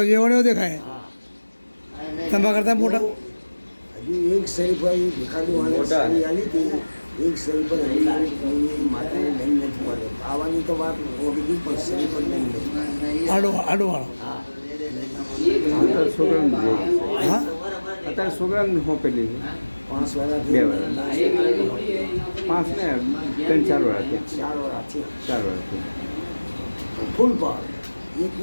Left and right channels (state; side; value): inverted; both; correlation -1.00